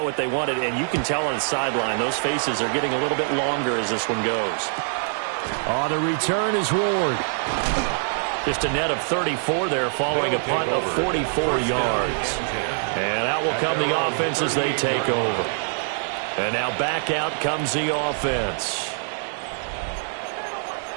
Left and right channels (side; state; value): left; silent; digital silence